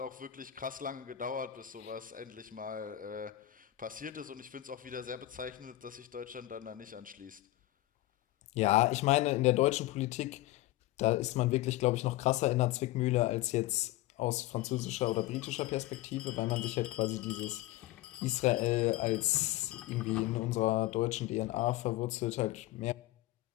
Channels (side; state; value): right; quieter; 16.0 dB